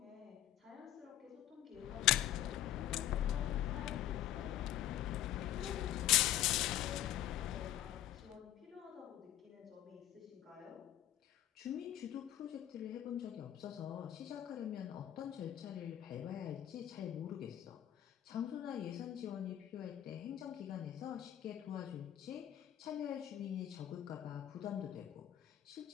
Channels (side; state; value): right; quieter; 12.0 dB